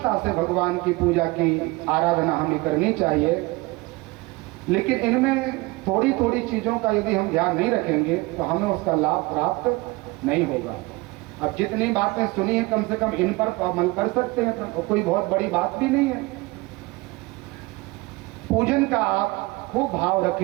से भगवान की पूजा की आराधना हमें करनी चाहिए, लेकिन इनमें थोड़ी थोड़ी चीजों का यदि हम ध्यान नहीं रखेंगे तो हमें उसका लाभ प्राप्त नहीं होगा। अब जितनी बातें सुनी है कम से कम इन पर अमल कर सकते हैं, तो कोई बहुत बड़ी बात भी नहीं है। पूजन का आप खूब भाव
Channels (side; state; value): left; quieter; 22.8 dB